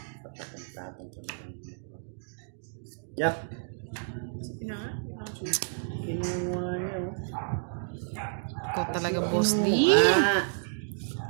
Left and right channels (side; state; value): left; silent; digital silence